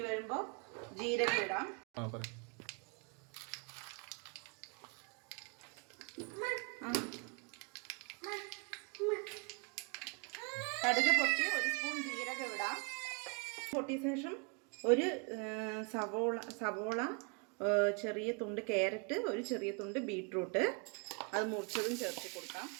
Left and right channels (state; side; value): quieter; left; 34.3 dB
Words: വരുമ്പോൾ ജീരകം ഇടാം. കടുക് പൊട്ടി ഒരു സ്പൂൺ ജീരകം ഇടാം. പൊട്ടിയ ശേഷം ഒരു സവോള ചെറിയ തുണ്ട് ക്യാരറ്റ്, ഒരു ചെറിയ തുണ്ട് ബീട്രൂട്ട് അത് മുറിച്ചതും ചേർത്ത് കൊടുക്കാം.